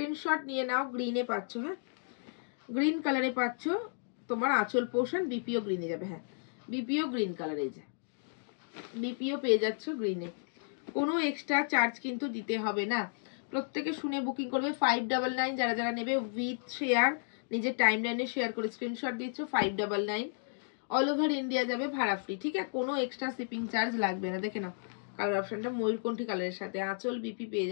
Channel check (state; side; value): silent; right; digital silence